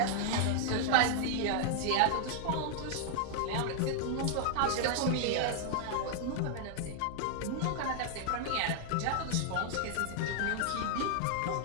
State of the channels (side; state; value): both; different; correlation -0.01